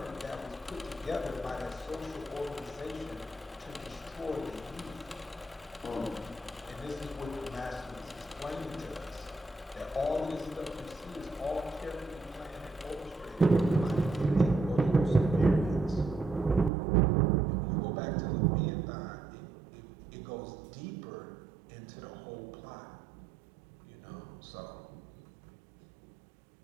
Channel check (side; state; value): left; drops out; at 16.7 s